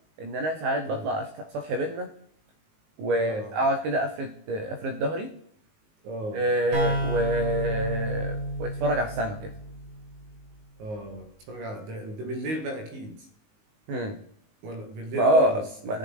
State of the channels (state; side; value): late; left; 19 ms